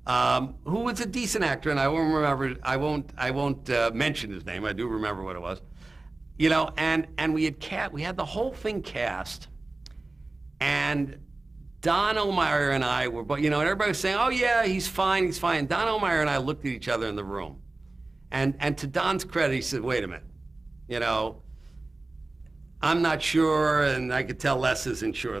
who was a decent actor, and I won't remember. I won't mention his name. I do remember what it was. You know, and we had the whole thing cast, and Don O'Meara and I were, but you know, and everybody was saying, "Oh yeah, he's fine, he's fine." Don O'Meara and I looked at each other in the room, and to Don's credit, he said, "Wait a minute, you know, I'm not sure, and I could tell Les isn't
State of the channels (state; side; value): quieter; left; 3.1 dB